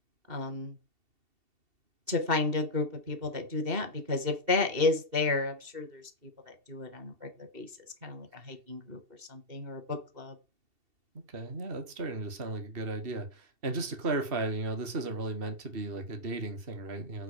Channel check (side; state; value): left; late; 2.7 ms